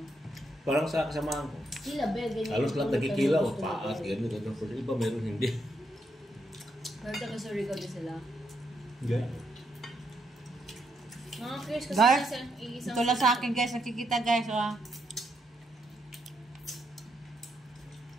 Parang sa kasamahan ko. Sila, be, ganyan. Halos lahat nagkikilaw. Paat, gano'n, gano'n. Pero iba meron hindi. Pero taga-Surigao din sila. Ganyan. Mga curious kasi Guys, isang ito lang sa akin guys, nakikita guys. Oh.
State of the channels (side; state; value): both; normal; correlation 0.79